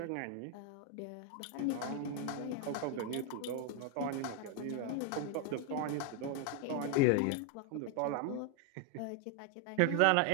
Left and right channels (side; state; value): both; different; correlation 0.01